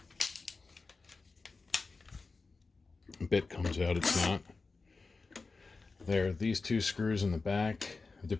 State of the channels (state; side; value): quieter; right; 4.0 dB